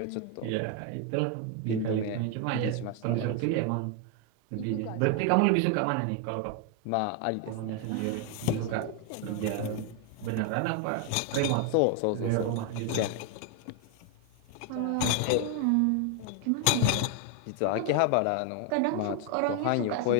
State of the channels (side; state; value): both; different; correlation 0.01